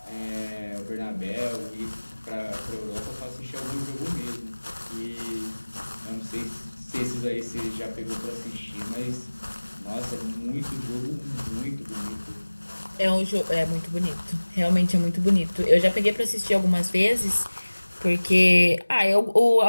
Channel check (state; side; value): inverted; both; correlation -1.00